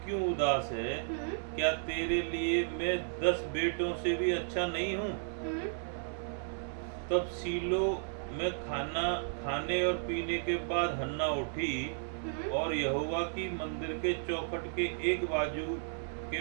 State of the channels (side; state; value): left; silent; 55 dB below the other